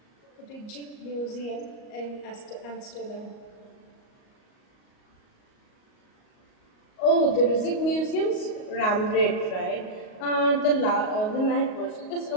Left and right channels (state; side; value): late; right; 38 ms